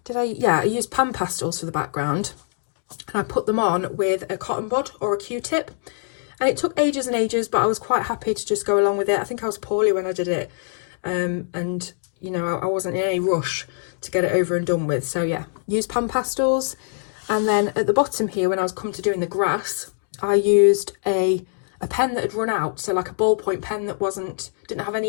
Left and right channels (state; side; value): silent; right; digital silence